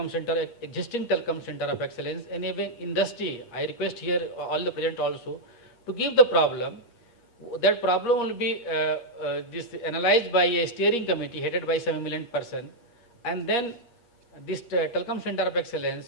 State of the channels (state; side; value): late; right; 8.5 ms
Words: center, existing telecom center of excellence, and even industry. I request here all the present also to give the problem. That problem will be analyzed by a steering committee headed by some eminent person, and then this telecom center of